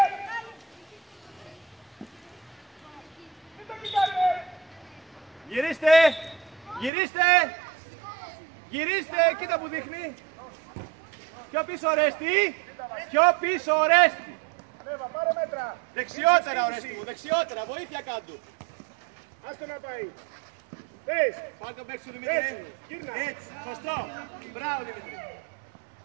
Γυρίστε! Γυρίστε! Γυρίστε! Κοίτα που δείχνει! Πιο πίσω Ορέστη! Πιο πίσω Ορέστη! Ανέβα, πάρε μέτρα. Δεξιότερα Ορέστη μου, δεξιότερα! Βοήθεια κάτω! Άστο να πάει. Πες. Πάρε τον παίκτη σου Δημήτρη! Έτσι, γύρνα. Έτσι! Σωστό! Μπράβο Δημήτρη!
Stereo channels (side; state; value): left; drops out; at 6.9 s